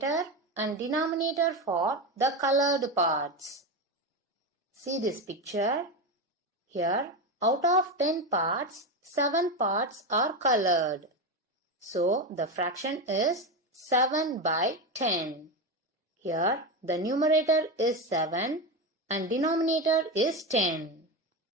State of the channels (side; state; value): both; normal; correlation 0.15